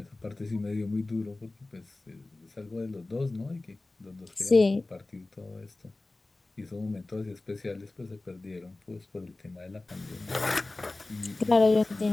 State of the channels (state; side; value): quieter; right; 3.0 dB